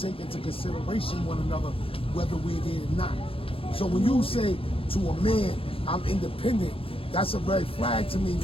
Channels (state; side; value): late; right; 0.27 ms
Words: into consideration one another, whether we're there or not. So when you say to a man, I'm independent, that's a red flag to me,